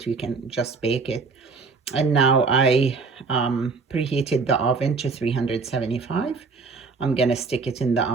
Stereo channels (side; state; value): left; quieter; 4.5 dB